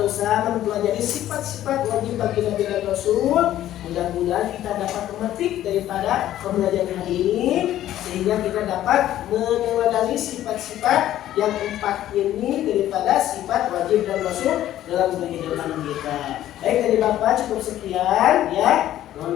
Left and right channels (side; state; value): right; quieter; 12.8 dB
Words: mempelajari sifat-sifat wajib bagi Nabi dan Rasul. Mudah-mudahan kita dapat memetik daripada pembelajaran hari ini, sehingga kita dapat meneladani sifat-sifat yang 4 ini daripada sifat wajib dan Rasul dalam kehidupan kita. Baik, dari Bapak cukup sekian ya.